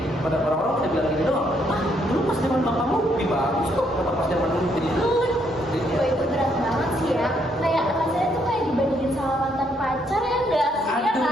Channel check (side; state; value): both; normal; correlation 0.72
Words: pada orang-orang pada bilang gini doang. Dulu pas zaman bapakmu lebih bagus kok. Kenapa pas zaman dulu jadi jelek? Wah, itu berat banget sih ya. Kayak rasanya tuh kayak dibandingin sama mantan pacar ya enggak sih? Ya